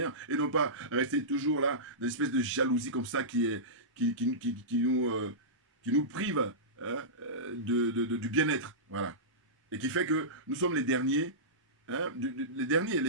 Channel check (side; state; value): both; normal; correlation -0.18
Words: Et non pas rester toujours là, dans une espèce de jalousie comme ça qui nous prive, hein, du bien-être. Voilà. Et qui fait que nous sommes les derniers. Hein, les derniers.